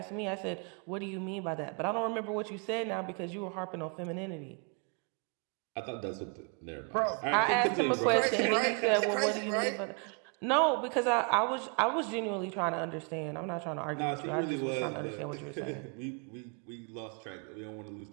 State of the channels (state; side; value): quieter; left; 36.7 dB